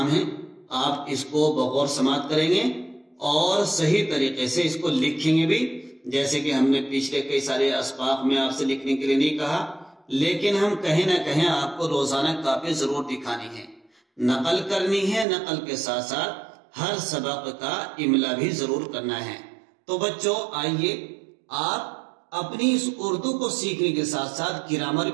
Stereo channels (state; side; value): drops out; left; at 15.2 s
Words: ہے۔ آپ اس کو بغور سماعت کریں گے اور صحیح طریقے سے اس کو لکھیں گے بھی، جیسے کہ ہم نے پچھلے کئی سارے اسباق میں آپ سے لکھنے کے لیے نہیں کہا، لیکن ہم کہیں نہ کہیں آپ کو روزانہ کاپی ضرور دکھانی ہے، نقل کرنی ہے۔ نقل کے ساتھ ساتھ ہر سبق کا املا بھی ضرور کرنا ہے۔ تو بچوں، آئیے آپ اپنی اس اردو کو سیکھنے کے ساتھ ساتھ گرامر